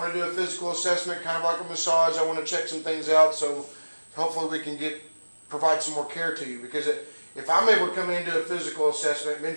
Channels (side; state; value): both; inverted; correlation -1.00